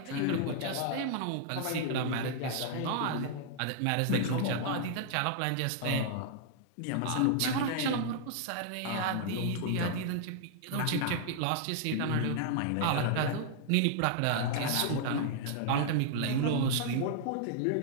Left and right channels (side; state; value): both; different; correlation -0.01